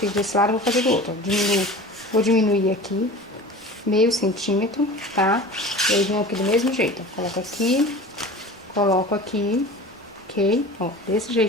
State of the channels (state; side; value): normal; both; correlation 0.37